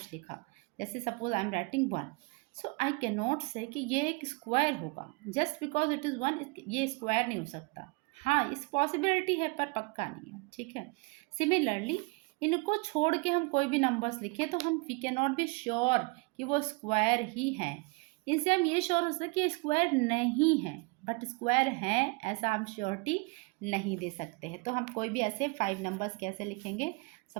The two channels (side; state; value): left; quieter; 28.2 dB